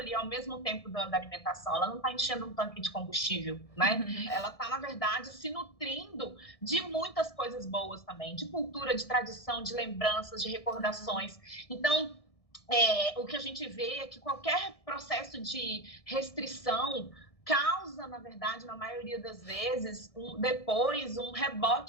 ao mesmo tempo da alimentação. Ela não está enchendo um tanque de combustível, né? Ela está, na verdade, se nutrindo de muitas coisas boas também, de cultura, de tradição, de lembranças, de recordações. Então, o que a gente vê é que qualquer processo de restrição causa, na verdade, na maioria das vezes, depois um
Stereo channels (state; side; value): late; right; 1.6 ms